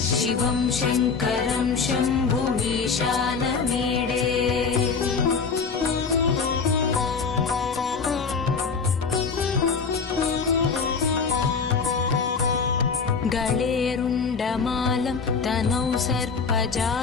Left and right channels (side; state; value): right; quieter; 5.2 dB